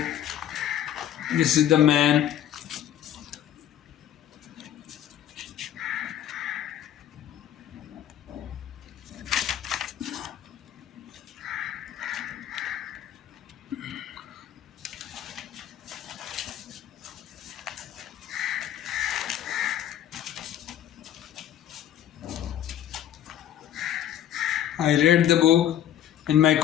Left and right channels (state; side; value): quieter; right; 11.0 dB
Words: This is the man. I read the book in my